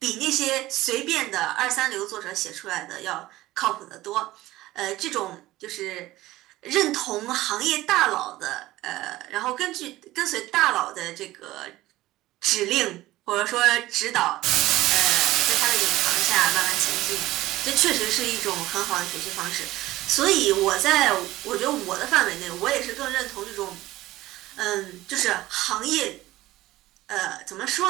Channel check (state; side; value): quieter; left; 16.9 dB